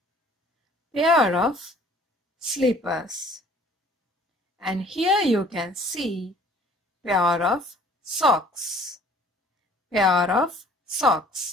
Pair of slippers. And here you can see pair of socks. Pair of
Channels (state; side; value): normal; both; correlation 0.54